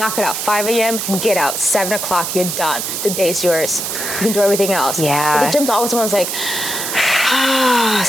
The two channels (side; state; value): right; noise; hiss, 3 dB below the sound